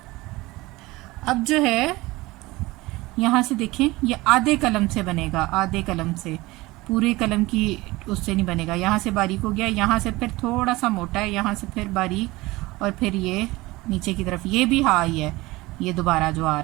अब जो है यहाँ से देखें, ये आधे कलम से बनेगा, आधे कलम से, पूरे कलम की उससे नहीं बनेगा। यहाँ से बारीक हो गया, यहाँ से फिर थोड़ा सा मोटा है, यहाँ से फिर बारीक, और फिर ये नीचे की तरफ ये भी हा ही है, ये दोबारा जो आ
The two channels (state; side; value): quieter; left; 20.6 dB